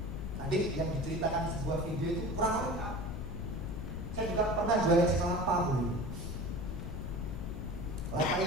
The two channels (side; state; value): left; noise; rumble, 6 dB below the sound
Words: tadi yang diceritakan di sebuah video itu kurang lengkap. Saya juga pernah jualan es kelapa dulu. Kelapa